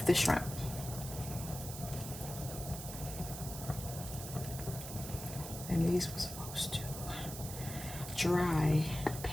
the shrimp. And these were supposed to dry,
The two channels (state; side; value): noise; right; hiss, 9 dB below the sound